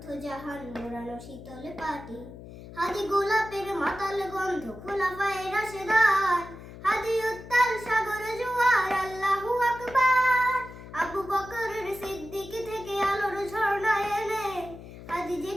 জাহান মোড়ানো শীতল পাটি হাদি গোলাপের মাতাল গন্ধ খোলা পায়ে রাশেদার হাদি উত্তাল সাগর জোয়ার আল্লাহু আকবার আবু বকরের সিদ্দিকী থেকে আলোর ঝর্ণা এনে হাদি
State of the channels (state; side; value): noise; left; hum, 15 dB below the sound